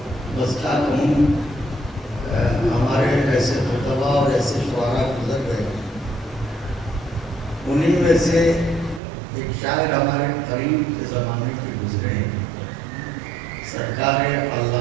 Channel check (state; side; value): drops out; left; at 9.0 s